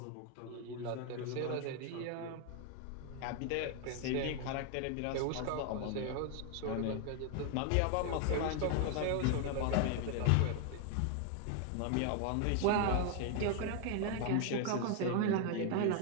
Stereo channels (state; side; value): different; both; correlation 0.00